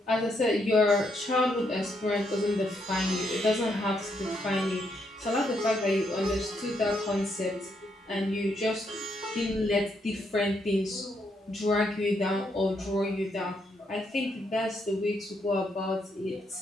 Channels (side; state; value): both; normal; correlation 0.76